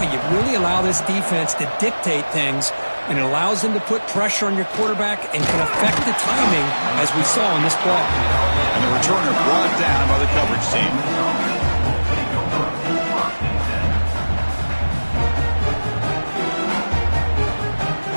you really allow this defense to dictate things, and it allows them to put pressure on your quarterback and can affect the timing, as we saw in this play. And the returner brought down by the coverage team.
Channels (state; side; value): inverted; both; correlation -1.00